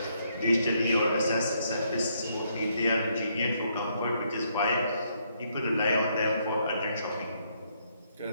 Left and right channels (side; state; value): both; inverted; correlation -0.73